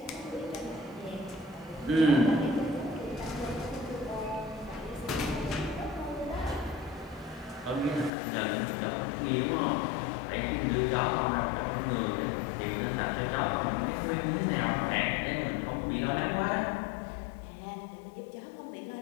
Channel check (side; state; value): right; drops out; at 8.1 s